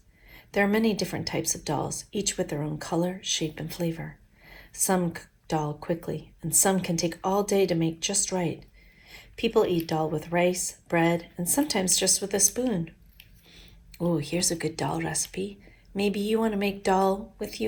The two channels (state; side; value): identical; both; correlation 1.00